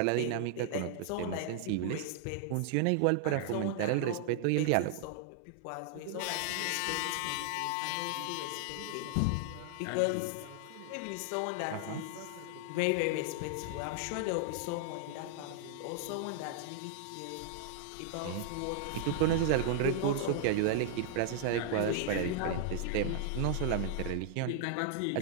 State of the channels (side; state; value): both; different; correlation 0.00